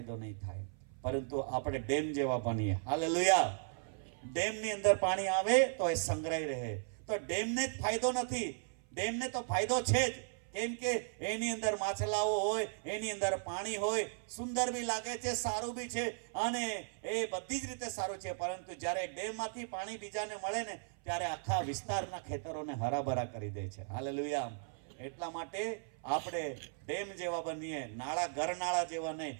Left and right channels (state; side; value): silent; left; 53 dB below the other